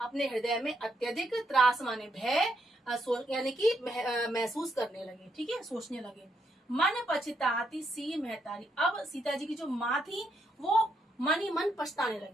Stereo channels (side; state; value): both; normal; correlation 0.77